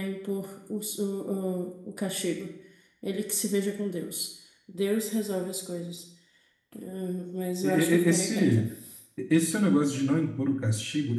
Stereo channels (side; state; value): both; identical; correlation 1.00